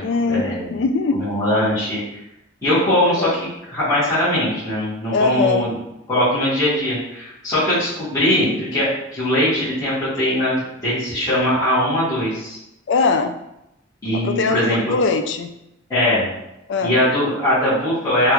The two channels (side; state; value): both; normal; correlation 0.13